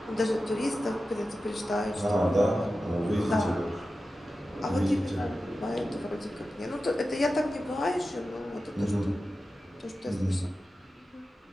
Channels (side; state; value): both; normal; correlation 0.93